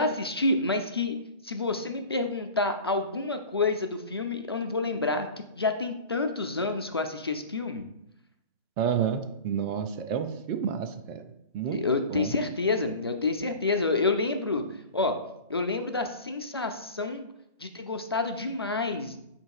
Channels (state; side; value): inverted; both; correlation -0.35